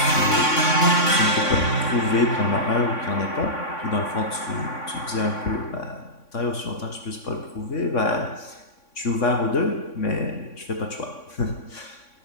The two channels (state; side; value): late; right; 3.6 ms